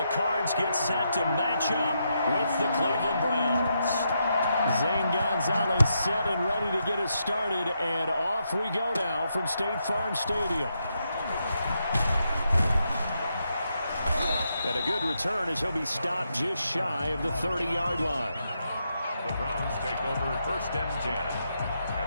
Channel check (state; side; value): inverted; both; correlation -0.82